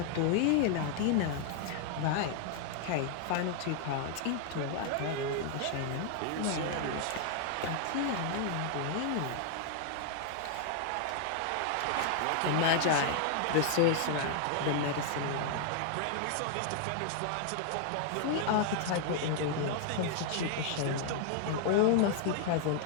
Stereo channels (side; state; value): both; different; correlation 0.00